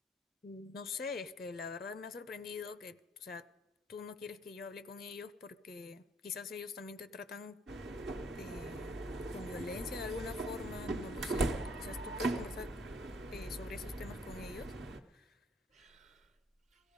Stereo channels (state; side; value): normal; both; correlation 0.64